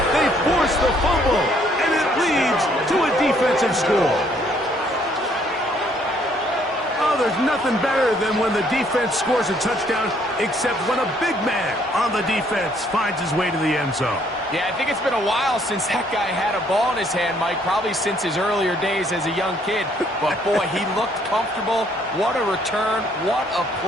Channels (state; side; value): normal; both; correlation 0.65